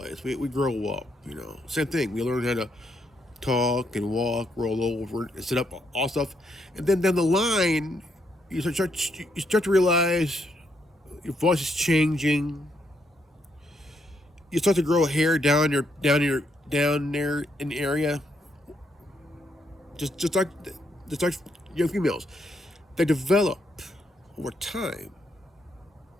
we grow up, you know. Same thing. We learn how to talk and walk, roll over, and sit up, all stuff. And then down the line, you start to realize your voice is changing. You start to grow hair down there in the area. Just like young females, they develop over time,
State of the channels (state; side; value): normal; both; correlation 0.76